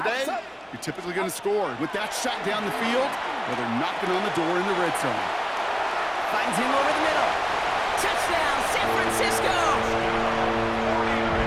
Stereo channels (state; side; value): identical; both; correlation 1.00